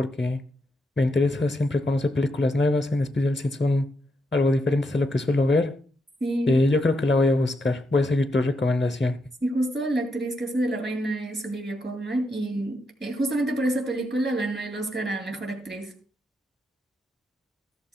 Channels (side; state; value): both; normal; correlation 0.81